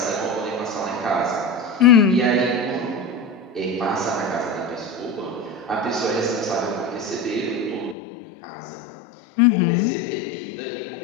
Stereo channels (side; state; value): right; drops out; at 8.0 s